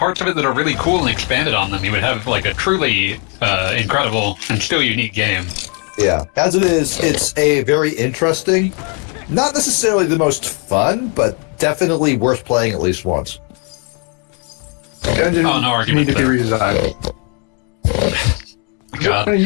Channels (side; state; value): right; quieter; 37.1 dB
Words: of it that are really cool and expanded on them, you would have like a truly incredible and still unique game. Yeah, as it is, it's a very interesting, not necessarily the most fun, but definitely worth playing at least once. Dungeons no argument need to be redesigned. God. One of